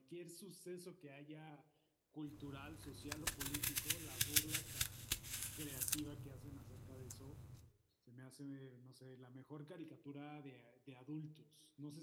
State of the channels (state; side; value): identical; both; correlation 1.00